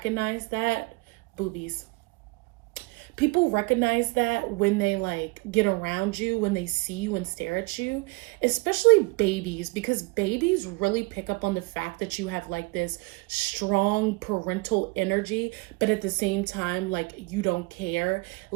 that, boobies. People recognize that when they like get around you, when they see you and stare at you, especially babies, because babies really pick up on the fact that you have like this strong parental energy, but at the same time, like you don't care.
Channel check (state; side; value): quieter; left; 27.2 dB